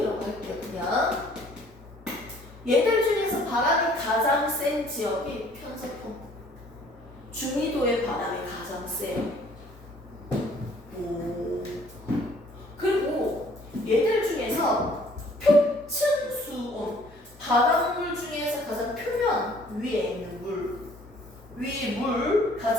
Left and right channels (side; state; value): both; normal; correlation 0.57